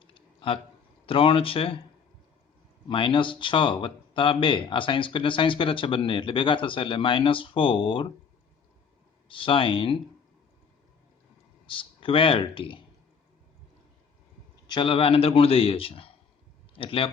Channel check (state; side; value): quieter; right; 6.2 dB